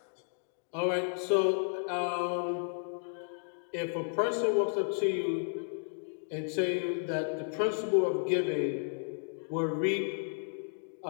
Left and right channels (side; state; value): right; silent; digital silence